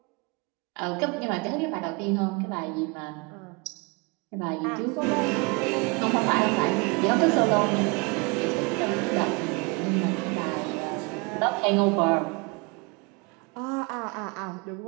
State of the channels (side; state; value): left; quieter; 29.2 dB